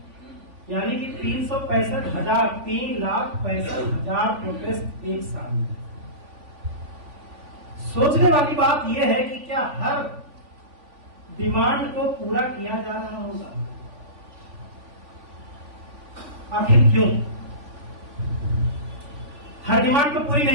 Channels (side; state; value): left; late; 3.5 ms